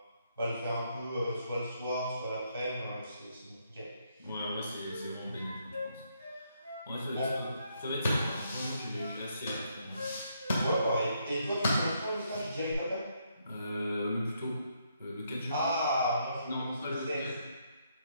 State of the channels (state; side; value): inverted; both; correlation -0.75